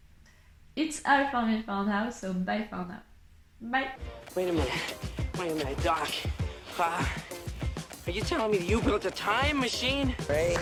It's all for me for now, so bye for now. Bye. Wait a minute, Doc. Are you telling me that you built a time machine?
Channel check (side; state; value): both; identical; correlation 1.00